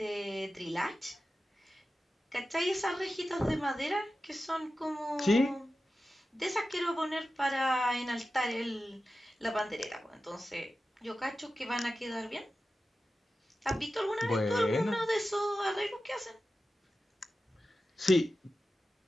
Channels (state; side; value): normal; both; correlation 0.93